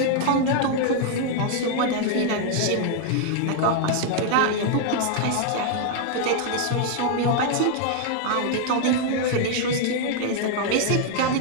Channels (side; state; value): both; different; correlation 0.00